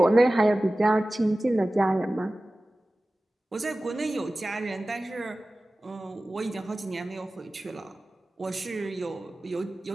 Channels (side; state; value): both; normal; correlation 0.97